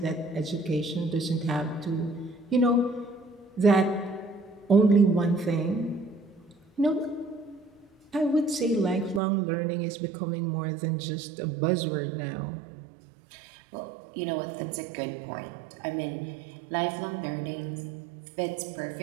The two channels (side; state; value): left; drops out; at 9.2 s